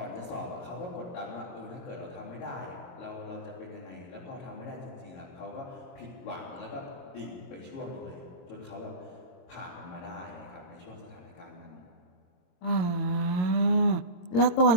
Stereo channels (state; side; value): late; right; 22 ms